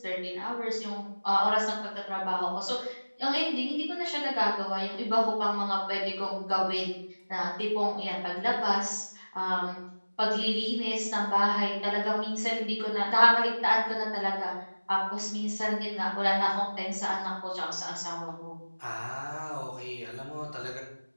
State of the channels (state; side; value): inverted; both; correlation -1.00